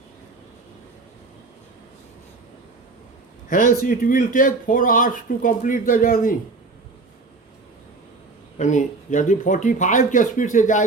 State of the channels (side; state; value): left; quieter; 3.7 dB